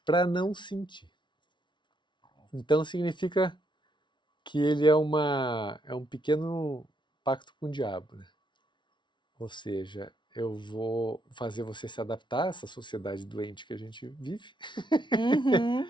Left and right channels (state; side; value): late; right; 0.23 ms